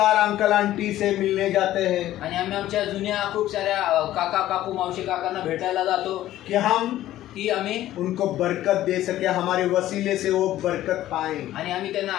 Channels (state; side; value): quieter; right; 13.9 dB